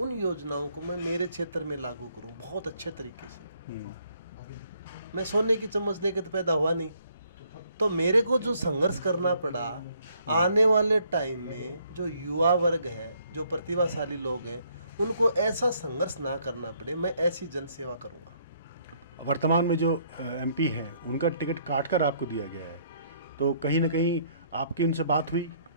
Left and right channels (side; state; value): both; inverted; correlation -0.67